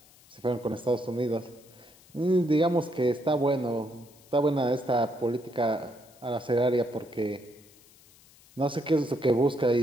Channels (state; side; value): noise; left; hiss, 26 dB below the sound